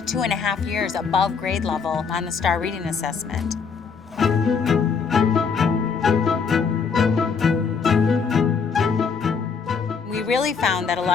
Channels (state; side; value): quieter; right; 5.6 dB